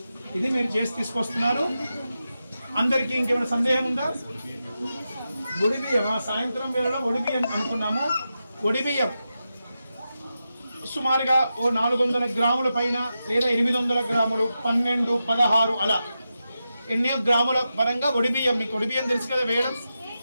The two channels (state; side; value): inverted; both; correlation -0.90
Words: ఇది మీరు చేసి తీసుకొస్తున్నారు. అందరికీ ఇంకేమైనా సందేహం ఉందా? ఒడిబియ్యం సాయంత్రం వేళలో ఒడిబియ్యం అనుకున్నాము. ఒడిబియ్యం సుమారుగా ఓ 400 గ్రాముల పైన లేదా 800 గ్రాములు, 12, 16 అలా ఎన్నో గ్రాముల పరంగా ఒడిబియ్యం. మీకు ఒడిబియ్యం తెలుసు కదా వేయడం.